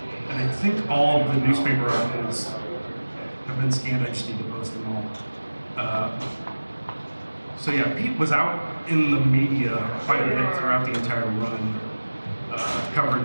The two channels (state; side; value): inverted; both; correlation -1.00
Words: And I think all of the newspaper articles have been scanned. I just need to post them all. So yeah, Pete was out in the media quite a bit throughout the entire run.